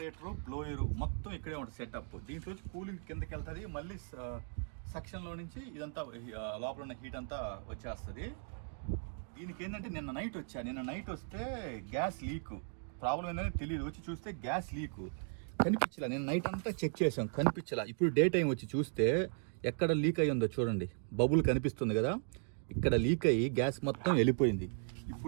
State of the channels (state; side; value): silent; left; 53 dB below the other